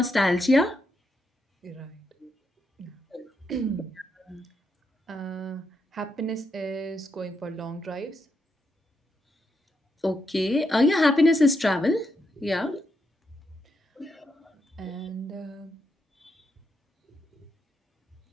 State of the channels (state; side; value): normal; both; correlation 0.81